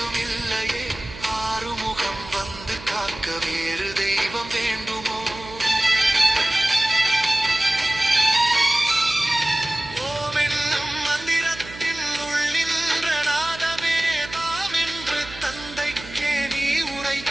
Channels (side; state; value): right; noise; hum, 15 dB below the sound